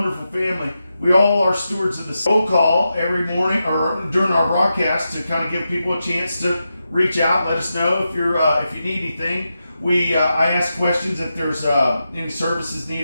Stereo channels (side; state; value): both; inverted; correlation -0.89